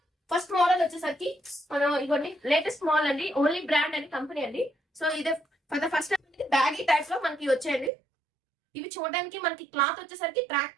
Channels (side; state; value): left; drops out; at 7.9 s